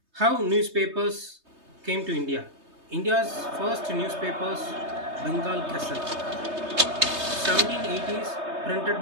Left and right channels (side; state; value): left; late; 3.2 ms